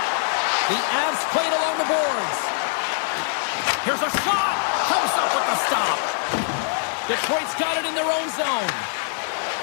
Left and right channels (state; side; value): silent; right; 63 dB below the other